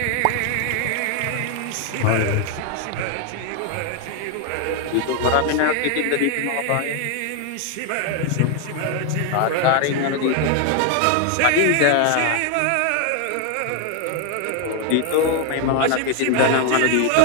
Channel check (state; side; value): different; both; correlation 0.00